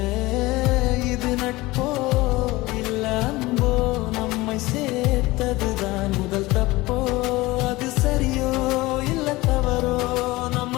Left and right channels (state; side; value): quieter; right; 20.4 dB